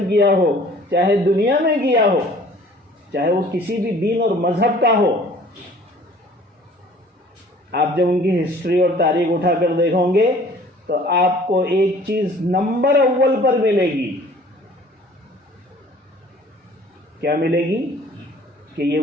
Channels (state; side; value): normal; both; correlation 0.51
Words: کیا ہو، چاہے دنیا میں کیا ہو، چاہے وہ کسی بھی دین اور مذہب کا ہو، آپ جب ان کی ہسٹری اور تاریخ اٹھا کر دیکھو گے تو آپ کو ایک چیز نمبر اول پر ملے گی. کیا ملے گی؟ کہ یہ